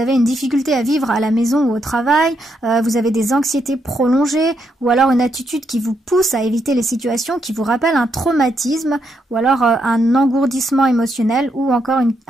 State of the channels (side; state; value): both; normal; correlation 0.79